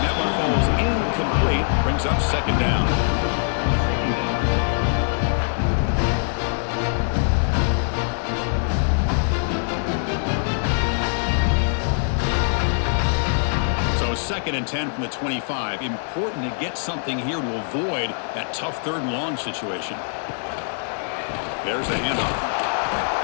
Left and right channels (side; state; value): right; silent; digital silence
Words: one falls incomplete. Brings up 2nd down. So 2nd and 10 from the 25. Important to get something here to avoid that tough 3rd and long situation. There's the handoff.